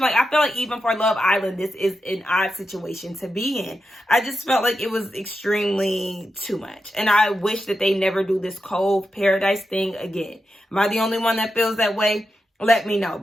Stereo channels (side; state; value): both; normal; correlation 0.88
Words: Like, I feel like even for Love Island, this is an odd situation to be in. I just felt like it was extremely too much. And I wish that they never do this Cove Paradise thing again. Am I the only one that feels that way? Let me know,